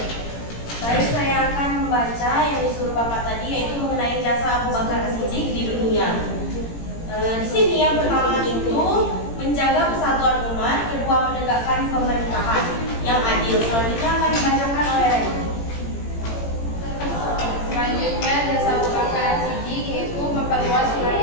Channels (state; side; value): late; right; 18 ms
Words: Baik, saya akan membaca yang disuruh Bapak tadi, yaitu mengenai jasa Abu Bakar As-Siddiq di dunia. Di sini yang pertama itu menjaga persatuan umat, kedua menegakkan pemerintahan yang adil. Selanjutnya akan dibacakan oleh Reke. Selanjutnya jasa Abu Bakar As-Siddiq yaitu memperluas